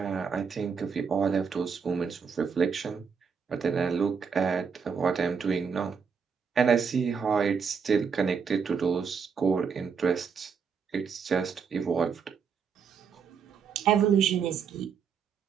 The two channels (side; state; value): left; quieter; 6.2 dB